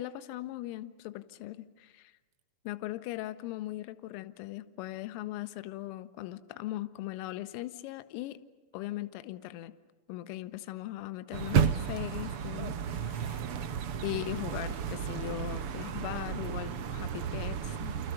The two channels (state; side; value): late; left; 7.0 ms